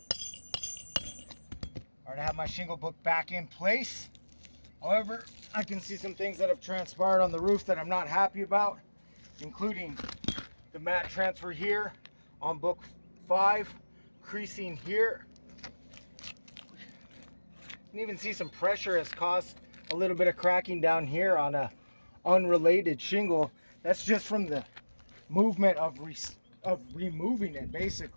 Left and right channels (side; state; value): both; inverted; correlation -1.00